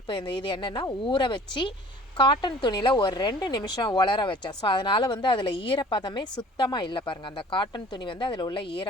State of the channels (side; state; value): both; normal; correlation 0.49